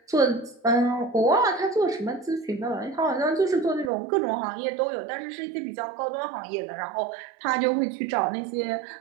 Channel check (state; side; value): drops out; left; at 3.9 s